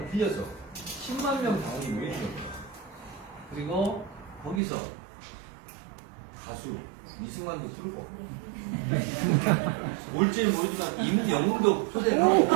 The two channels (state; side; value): drops out; left; at 4.6 s